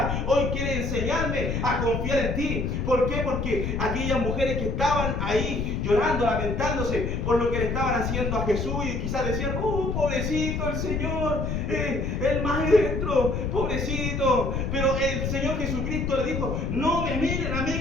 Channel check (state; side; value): noise; left; rumble, 1 dB below the sound